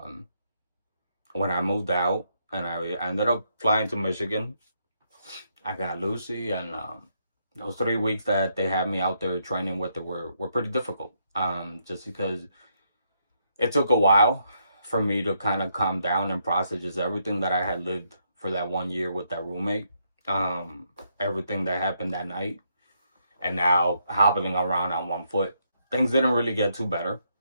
When I moved out and I ended up flying to Michigan, I got Lucy, and those 3 weeks that they had me out there training with her were pretty difficult. Just because it took a while for me to kind of calm down and process just everything that I had lived for that 1 year with that roommate. Everything that happened that night, and now hobbling around on one foot. Things didn't really get too better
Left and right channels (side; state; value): both; inverted; correlation -0.76